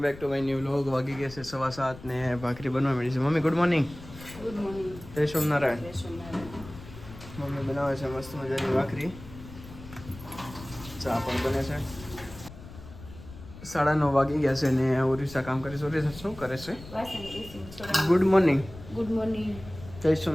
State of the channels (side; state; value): left; noise; rumble, 16 dB below the sound